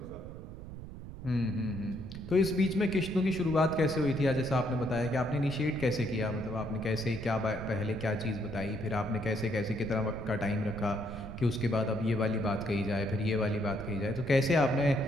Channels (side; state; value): right; noise; rumble, 11 dB below the sound